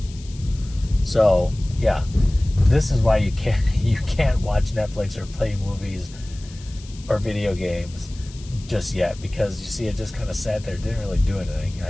So yeah, this is why you can't watch Netflix or play movies or video games just yet, because you see it just kind of sat there, didn't really do anything. I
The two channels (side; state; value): left; noise; hiss, 21 dB below the sound